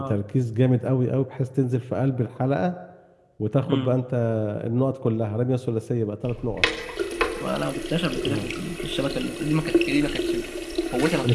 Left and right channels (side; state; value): both; identical; correlation 1.00